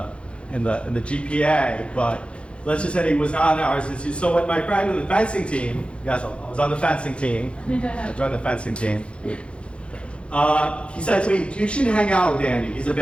GPA, but let's just say he was not in the honors institute. So when my friend in the fencing team, yes, I was on the fencing team. I joined the fencing team. He said to me, "You shouldn't hang out with Andy. He's a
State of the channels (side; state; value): right; late; 0.059 ms